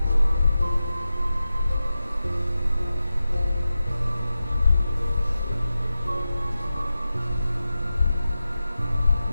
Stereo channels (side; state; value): both; inverted; correlation -0.93